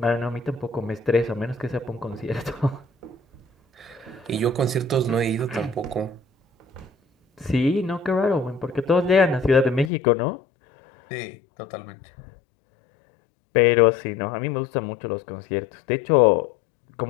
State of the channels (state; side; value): drops out; right; at 9.9 s